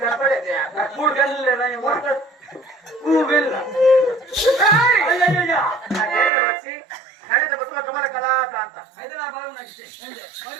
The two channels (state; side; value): drops out; left; at 6.3 s